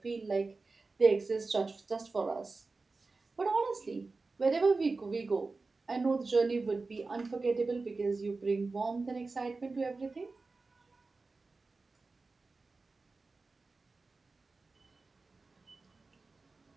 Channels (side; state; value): left; quieter; 3.8 dB